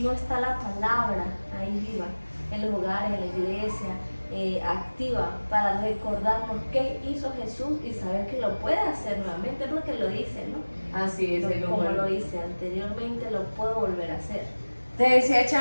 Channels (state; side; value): inverted; both; correlation -1.00